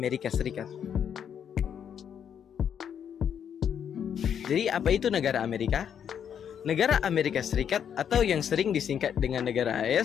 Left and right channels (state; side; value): quieter; right; 8.4 dB